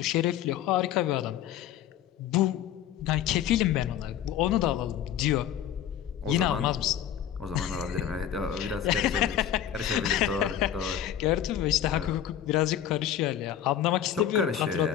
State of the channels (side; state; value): right; quieter; 10.4 dB